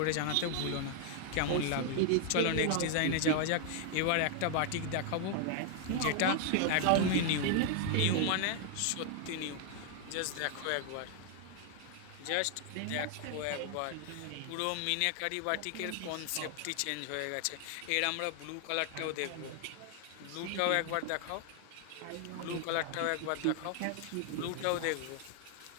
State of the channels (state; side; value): different; both; correlation 0.00